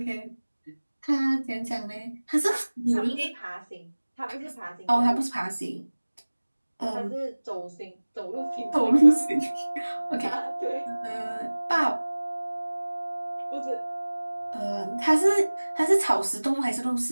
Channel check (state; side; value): inverted; both; correlation -1.00